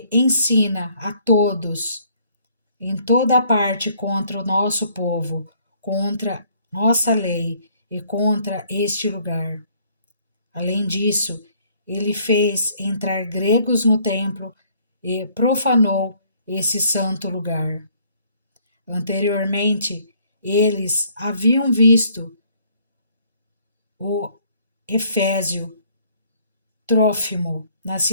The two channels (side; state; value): both; inverted; correlation -0.62